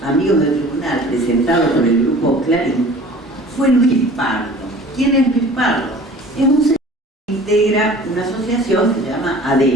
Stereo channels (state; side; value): normal; both; correlation 0.45